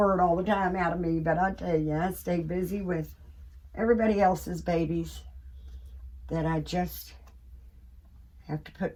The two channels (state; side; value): identical; both; correlation 1.00